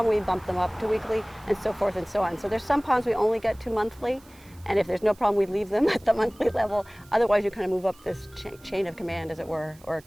we bump them up to weekly, and so forth and so on. So there's some ponds we only get to monthly, and if there's no problem, we leave them at the monthly level. Otherwise, you kind of move up this chain of command, as it were, or a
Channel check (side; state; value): right; noise; hiss, 27 dB below the sound